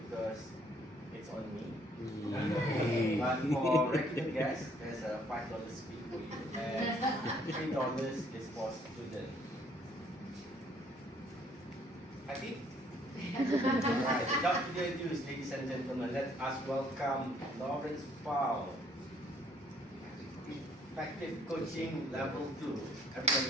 it's on me. But for regular guests, there's a $5 fee for you, and $3 is for students. Happy? Right, without further ado, ladies and gentlemen, let us welcome Lawrence Powell, Effective Coaching Level 2.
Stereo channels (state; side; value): normal; both; correlation 0.63